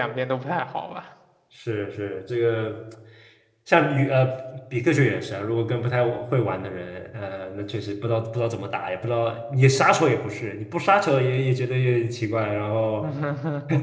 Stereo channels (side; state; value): both; identical; correlation 1.00